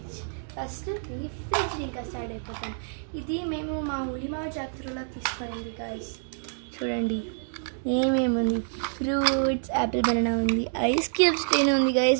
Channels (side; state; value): left; silent; digital silence